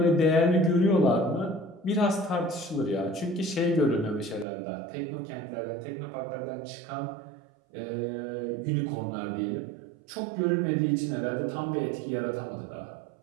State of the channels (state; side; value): drops out; left; at 4.5 s